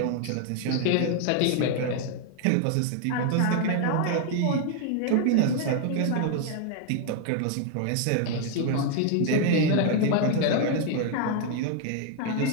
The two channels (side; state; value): both; different; correlation 0.00